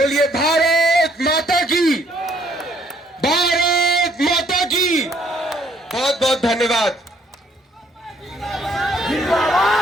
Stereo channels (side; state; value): both; normal; correlation 0.65